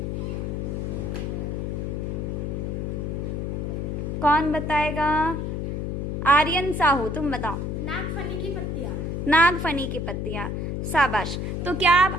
कौन बताएगा? आर्यन साहू, तुम बताओ। नागफनी की पत्तियां। नागफनी की पत्तियां, शाबाश। तो क्या अब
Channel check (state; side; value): noise; left; hum, 2 dB below the sound